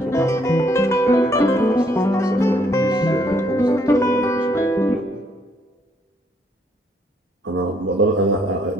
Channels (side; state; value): both; normal; correlation 0.70